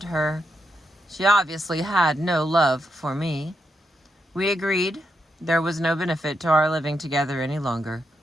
her. She obviously had no love for me. We agreed there was no benefit to our living together any longer,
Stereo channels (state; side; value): normal; both; correlation 0.82